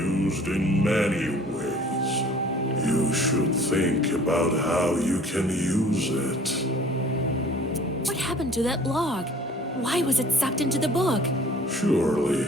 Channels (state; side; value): normal; both; correlation 0.50